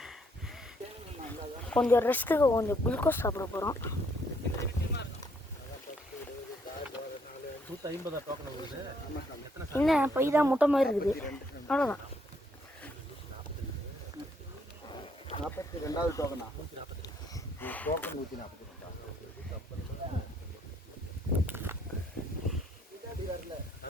கொஞ்சம் ரெஸ்ட்டுக்கு கொஞ்சம் குளுக்கோஸ் சாப்பிட போகிறோம். 150 டோக்கன் வருது. என்ன பை தான் முட்டை மாதிரி இருக்குது, அவ்வளோதான். 42வது டோக்கனா? டோக்கன் 142.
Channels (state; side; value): normal; both; correlation 0.69